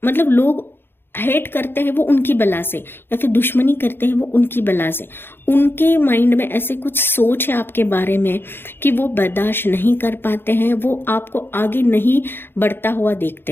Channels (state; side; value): late; right; 0.10 ms